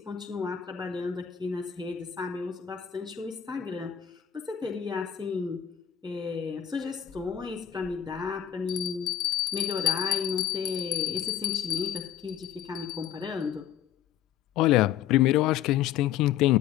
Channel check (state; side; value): quieter; right; 9.6 dB